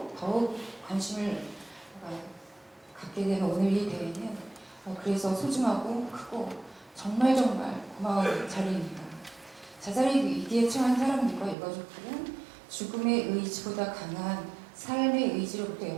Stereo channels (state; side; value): drops out; left; at 11.6 s